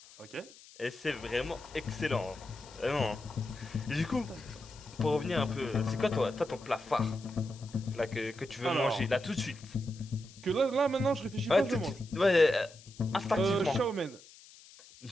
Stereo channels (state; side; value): noise; left; hiss, 21 dB below the sound